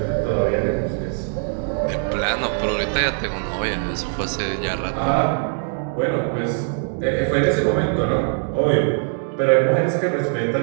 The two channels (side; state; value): left; silent; 60 dB below the other